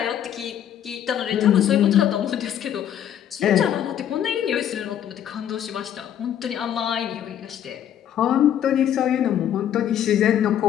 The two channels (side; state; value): right; quieter; 10.1 dB